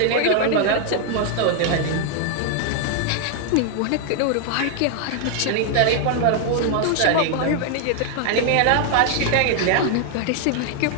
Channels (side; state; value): both; different; correlation 0.00